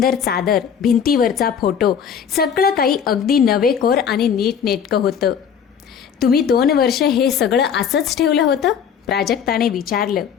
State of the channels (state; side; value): quieter; right; 7.6 dB